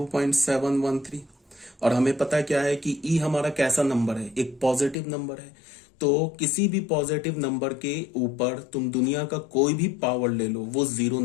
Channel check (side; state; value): right; drops out; at 5.0 s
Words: और हमें पता क्या है कि ई हमारा कैसा नंबर है, एक पॉजिटिव नंबर है। तो किसी भी पॉजिटिव नंबर के ऊपर तुम दुनिया का कोई भी पावर ले लो, वो 0